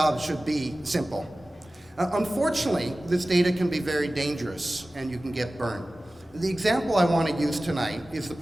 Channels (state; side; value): normal; both; correlation 0.96